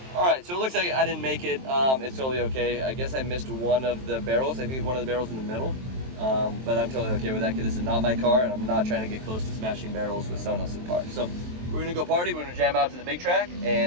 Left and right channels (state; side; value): late; left; 23 ms